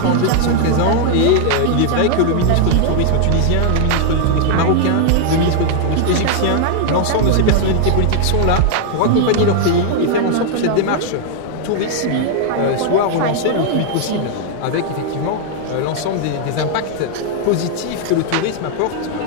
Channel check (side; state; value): both; different; correlation 0.00